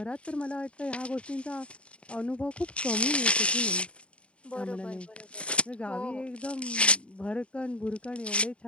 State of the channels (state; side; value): late; right; 0.059 ms